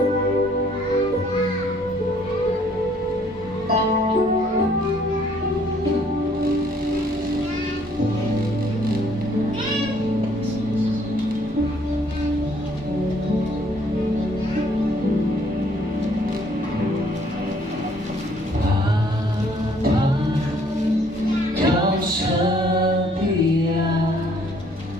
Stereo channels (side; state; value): both; normal; correlation 0.63